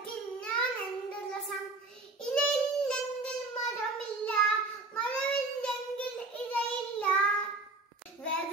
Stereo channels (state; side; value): quieter; left; 3.3 dB